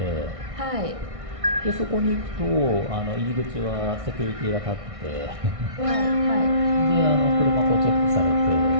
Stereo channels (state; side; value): late; left; 1.6 ms